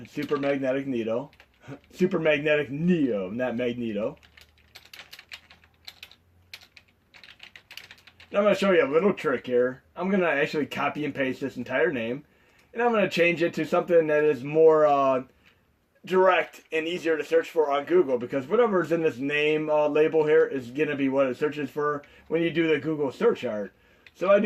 Super Magnetic Neo. Super Magnetic Neo, not Magneto. Now I'm going to show you a little trick here. I'm going to actually copy and paste this entire name. And I'm going to change it to something that is more direct and easier to search for on Google. Because whatever is in this name label here is going to be what it searches for when you do the Google search art. So I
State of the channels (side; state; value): both; identical; correlation 1.00